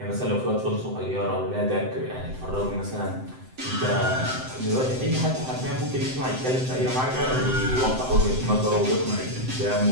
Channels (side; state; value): left; late; 7.8 ms